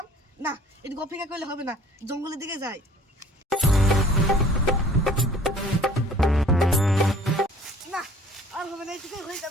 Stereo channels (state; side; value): normal; both; correlation 0.52